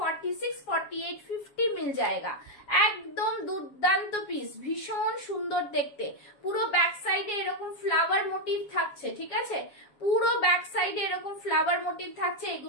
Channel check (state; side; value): late; right; 7.3 ms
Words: 48, 50 मिल जाएगा। একদম দুর্দান্ত পিস, ভীষণ সুন্দর দেখতে, পুরো ব্যাক সাইডে এরকম ফ্লাওয়ার মোটিভ থাকছে। ঠিক আছে, পুরো ব্যাক সাইডে এরকম ফ্লাওয়ার মোটিভ থাকছে,